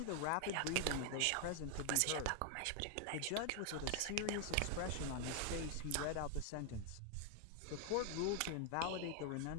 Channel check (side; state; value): both; different; correlation 0.00